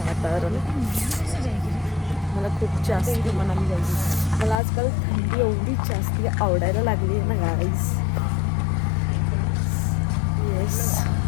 वातावरण. मला खूप जास्त मनाली जायची. मला आजकाल थंडी एवढी जास्ती आवडायला लागली आहे ना गाईज. येस.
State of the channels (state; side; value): drops out; right; at 4.5 s